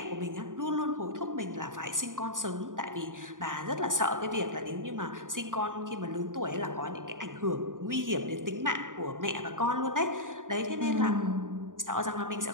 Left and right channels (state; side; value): late; left; 0.88 ms